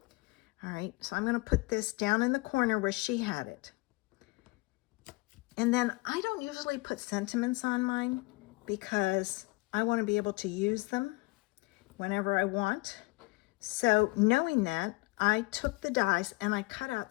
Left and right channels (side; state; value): right; quieter; 24.7 dB